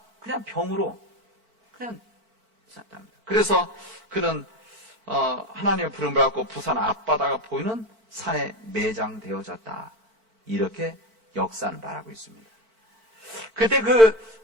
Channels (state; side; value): late; left; 4.5 ms